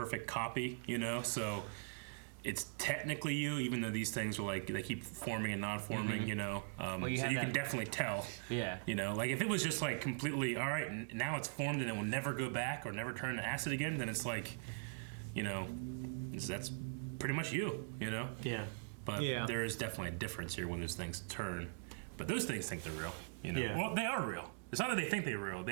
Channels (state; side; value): silent; left; digital silence